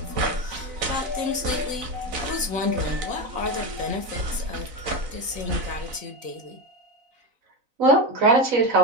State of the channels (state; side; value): late; left; 4.0 ms